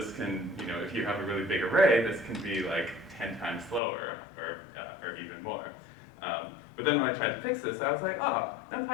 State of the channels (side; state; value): right; drops out; at 3.8 s